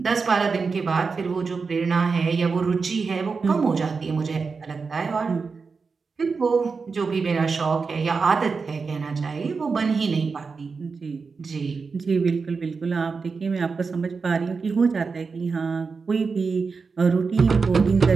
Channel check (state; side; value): quieter; left; 4.8 dB